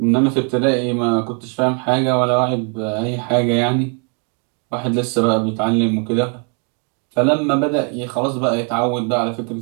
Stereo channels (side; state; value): left; quieter; 38.8 dB